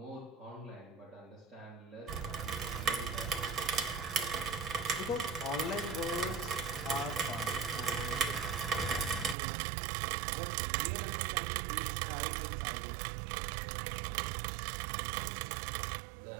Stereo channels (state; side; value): drops out; left; at 9.3 s